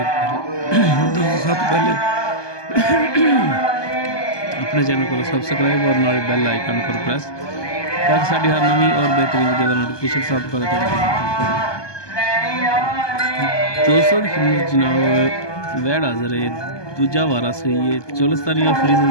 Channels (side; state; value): right; late; 1.2 ms